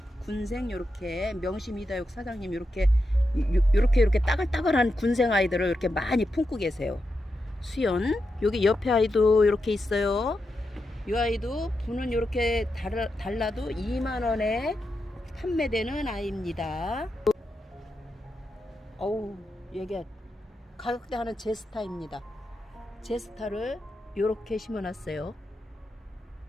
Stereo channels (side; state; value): both; normal; correlation 0.87